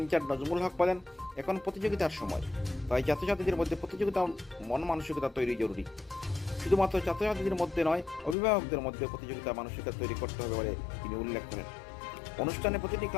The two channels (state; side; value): drops out; right; at 8.3 s